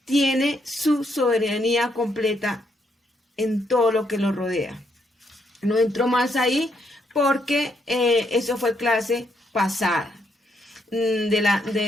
tiene su soberanía completa en todo lo que lo rodea. No entro más ahí porque eso fue clase pasada, de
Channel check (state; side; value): normal; both; correlation 0.75